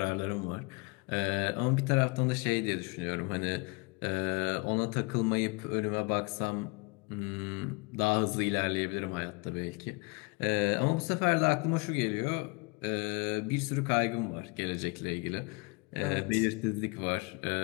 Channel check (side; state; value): right; quieter; 29.1 dB